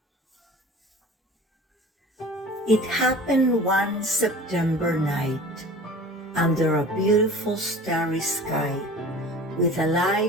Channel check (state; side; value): normal; both; correlation 0.41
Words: It happened one September night, under a beautiful starry sky, with a